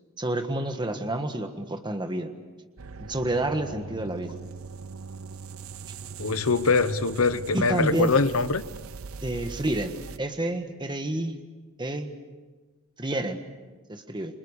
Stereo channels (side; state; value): both; normal; correlation 0.16